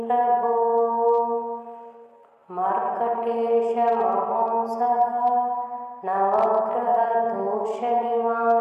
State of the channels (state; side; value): identical; both; correlation 1.00